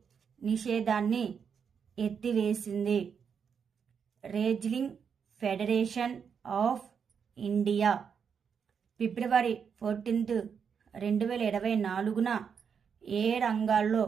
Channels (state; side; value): quieter; left; 6.8 dB